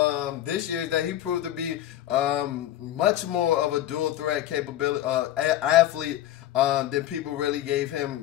him this year is that he proved to be much more of a dual threat capability athlete than people really gave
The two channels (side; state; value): right; quieter; 12.9 dB